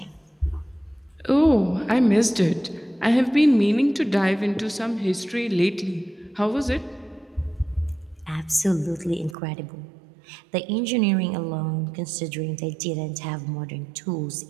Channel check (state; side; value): drops out; left; at 9.3 s